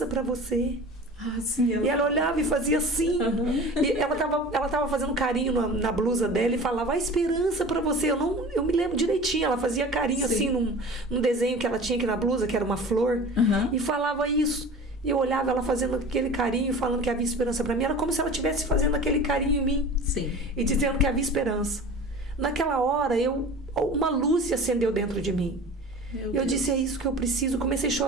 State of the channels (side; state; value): both; normal; correlation 0.38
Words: para você. Ah, sim. E ela olhava e fazia assim. E ela tava fazendo carinho na blusa dela e falava, a esperança para você. Eu me lembro direitinho, ela fazia carinho assim num desenho que ela tinha aqui na blusa, que era uma flor, e falava isso. E eu olhava ela fazendo aquele carinho, falando que havia esperança para mim. Era como se ela estivesse fazendo aquele carinho em mim. Sim. E dizendo que havia esperança. Naquela hora, uma luz se acendeu dentro de mim. Eu disse, é isso que eu preciso. Comecei a